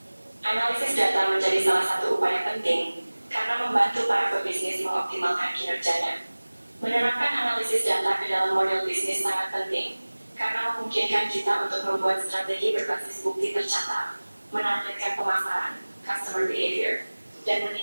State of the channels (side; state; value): both; inverted; correlation -1.00